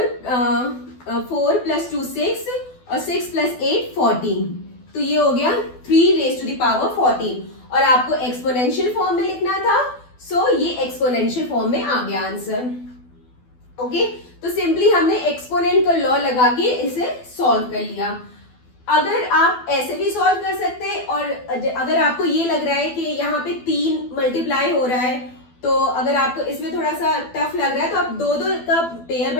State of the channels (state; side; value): late; right; 12 ms